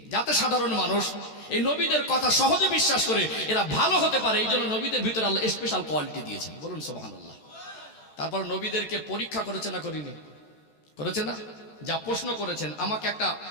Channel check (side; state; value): right; late; 14 ms